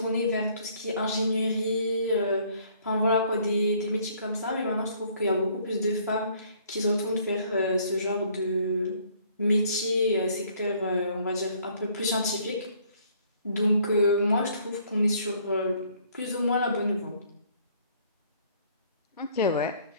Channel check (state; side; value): inverted; both; correlation -0.61